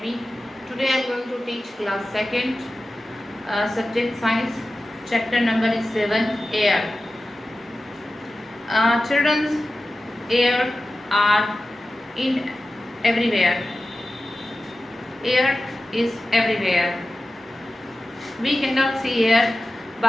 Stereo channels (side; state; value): both; normal; correlation 0.94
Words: Today I am going to teach class 2nd, subject science, chapter number is 7, air. Children's air are in everywhere. Air is everywhere. We cannot see air,